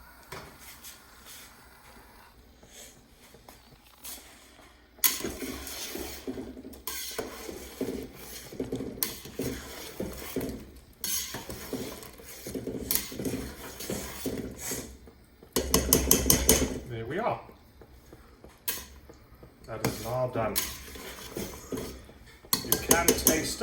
There we are. That is now done. You can taste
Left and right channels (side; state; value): both; identical; correlation 1.00